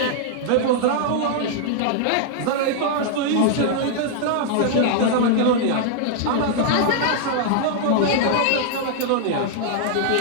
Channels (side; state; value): both; different; correlation -0.01